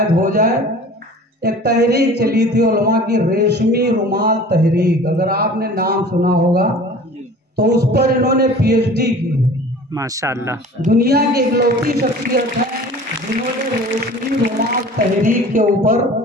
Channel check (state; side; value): normal; both; correlation 0.43